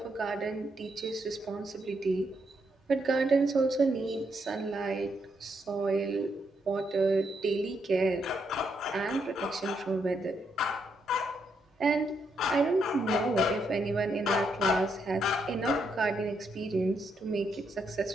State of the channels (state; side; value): normal; both; correlation 0.78